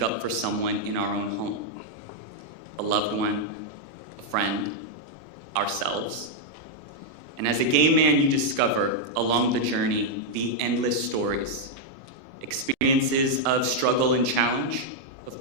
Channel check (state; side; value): late; left; 24 ms